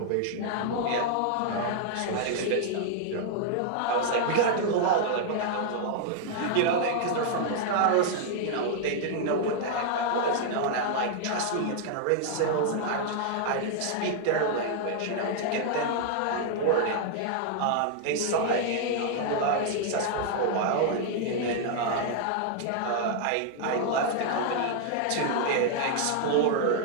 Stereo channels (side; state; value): both; different; correlation 0.00